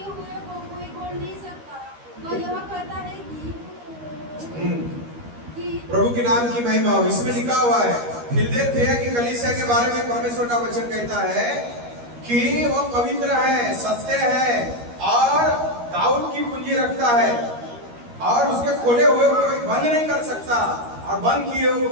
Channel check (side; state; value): left; late; 13 ms